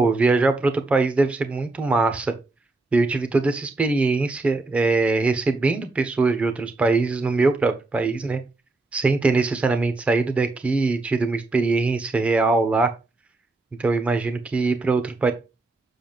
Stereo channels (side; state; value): left; quieter; 3.2 dB